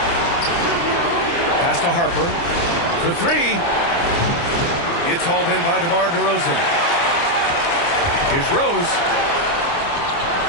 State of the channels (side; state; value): right; late; 29 ms